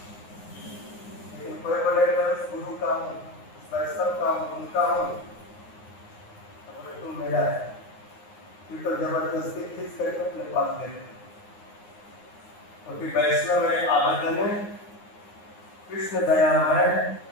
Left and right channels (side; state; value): right; late; 9.6 ms